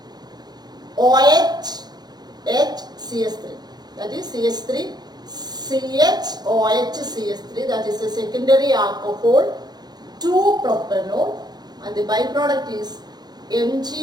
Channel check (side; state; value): left; late; 0.20 ms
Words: COH CH3. That is CH3 CHOH CH3. That is a secondary alcohol 2-propanol and the byproduct is